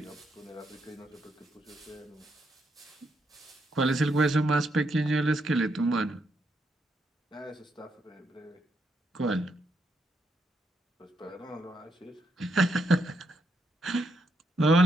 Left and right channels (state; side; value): normal; both; correlation 0.79